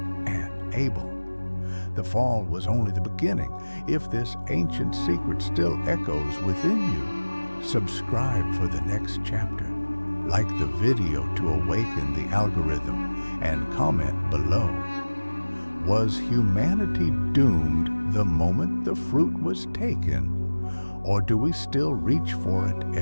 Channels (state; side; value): inverted; both; correlation -1.00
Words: and Abel. The fall was only the beginning. If this ancient secret still echoes within you, subscribe for the next chapter. Like the video to awaken the algorithm, and comment below. Was humanity doomed the moment the fruit was taken? Or do we still reach for it